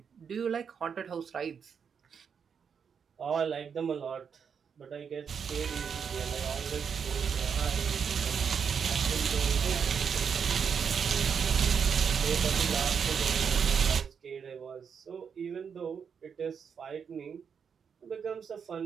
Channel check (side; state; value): left; quieter; 6.8 dB